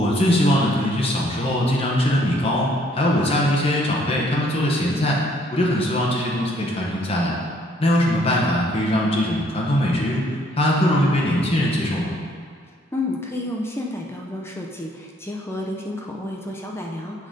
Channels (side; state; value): both; normal; correlation 0.64